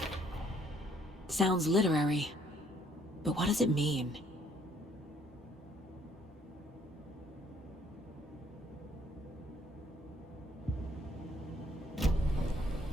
Sounds literary, but what does it mean?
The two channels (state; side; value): normal; both; correlation 0.65